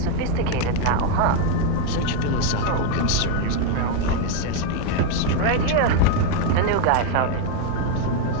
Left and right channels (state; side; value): different; both; correlation 0.01